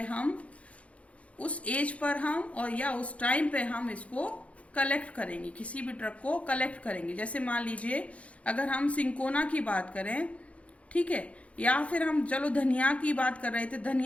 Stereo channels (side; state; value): right; late; 0.064 ms